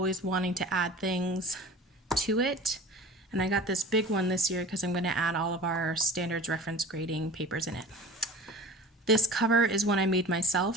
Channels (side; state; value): both; normal; correlation 0.39